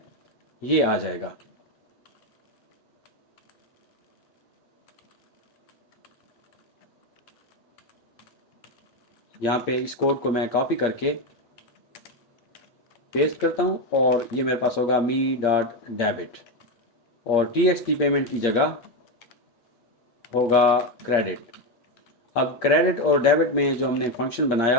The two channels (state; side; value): late; right; 8.6 ms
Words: ये आ जाएगा। यहाँ पे इस कोड को मैं कॉपी करके पेस्ट करता हूँ और ये मेरे पास होगा me.debit और TXT पेमेंट की जगह होगा क्रेडिट। अब क्रेडिट और डेबिट में जो हमने फंक्शन बनाया